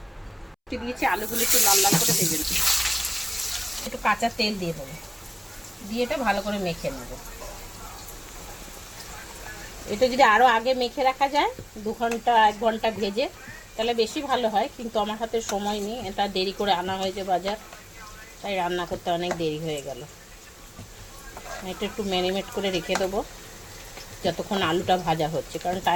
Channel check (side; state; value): both; identical; correlation 1.00